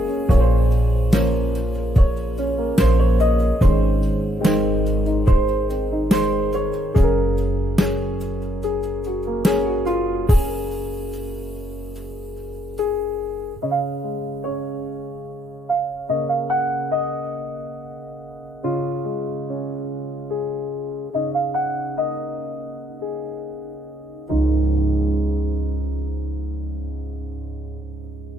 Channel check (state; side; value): normal; both; correlation 0.75